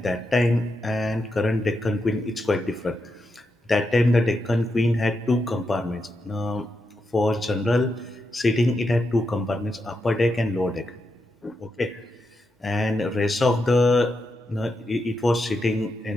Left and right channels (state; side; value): normal; both; correlation 0.85